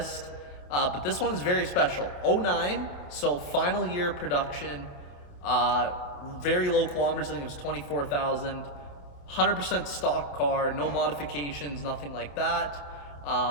but this one is very special. 09, so final year production, very low kilometers, I think it was 24,000, 100% stock car, no modifications, nothing like that.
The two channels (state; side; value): late; right; 27 ms